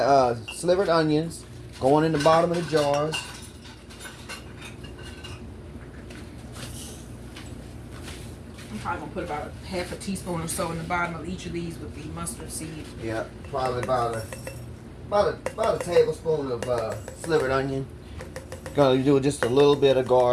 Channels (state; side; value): identical; both; correlation 1.00